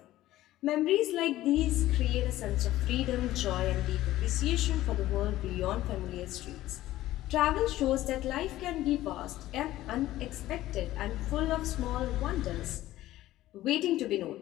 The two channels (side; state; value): right; quieter; 15.2 dB